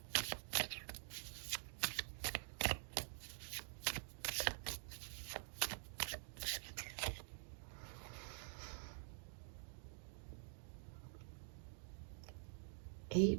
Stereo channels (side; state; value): left; silent; digital silence